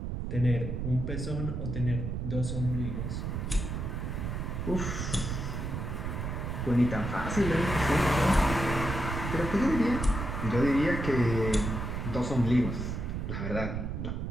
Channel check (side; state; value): right; noise; rumble, 3 dB below the sound